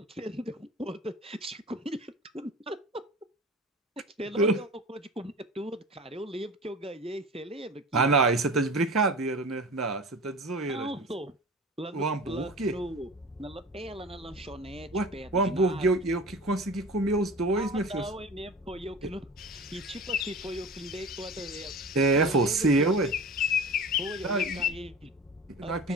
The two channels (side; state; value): both; normal; correlation 0.35